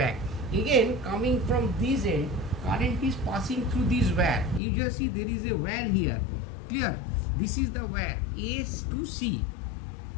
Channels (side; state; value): right; drops out; at 4.6 s